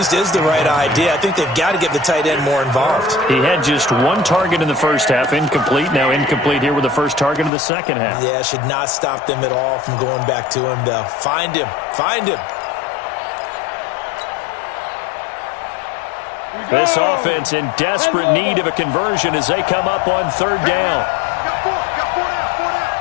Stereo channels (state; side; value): drops out; right; at 7.5 s